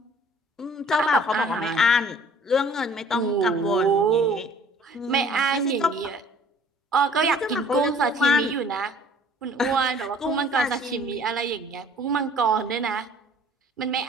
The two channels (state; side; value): normal; both; correlation 0.53